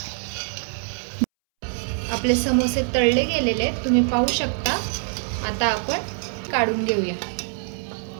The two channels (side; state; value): left; silent; 63 dB below the other